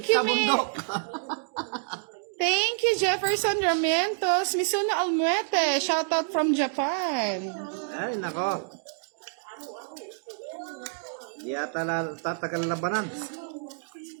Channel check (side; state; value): left; silent; digital silence